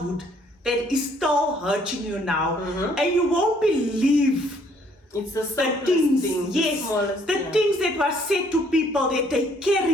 that is still hurting you now, and you won't believe it's the things, things that were said to people that they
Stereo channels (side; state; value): both; normal; correlation 0.63